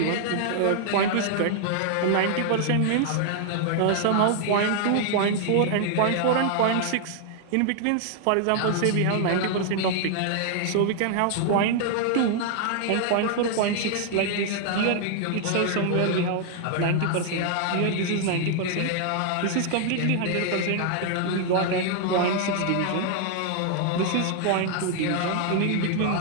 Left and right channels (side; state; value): both; different; correlation 0.00